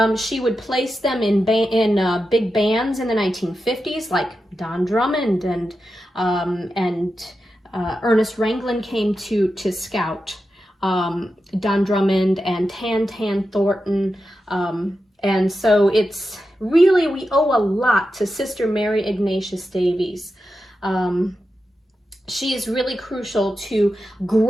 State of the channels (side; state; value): both; normal; correlation 0.90